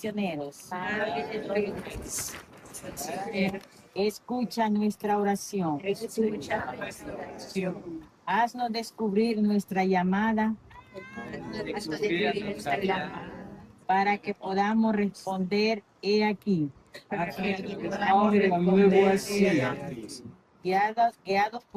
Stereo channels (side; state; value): both; identical; correlation 1.00